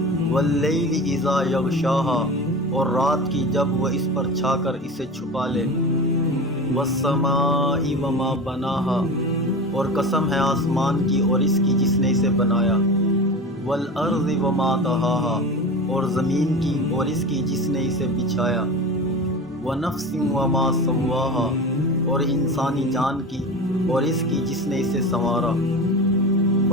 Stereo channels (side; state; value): both; normal; correlation 0.30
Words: واللیل اذا یغشاها، اور رات کی جب وہ اس پر چھا کر اسے چھپا لے، والسماء وما بناها، اور قسم ہے آسمان کی اور اس کی جس نے اسے بنایا، والارض وما طحاها، اور زمین کی اور اس کی جس نے اسے بچھایا، ونفس وما سواها، اور انسانی جان کی اور اس کی جس نے اسے سنوارا،